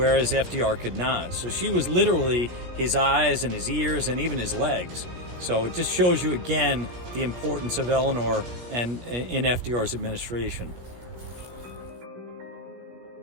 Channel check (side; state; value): left; late; 17 ms